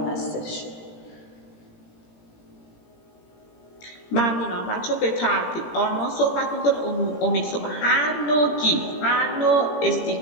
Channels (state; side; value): late; right; 18 ms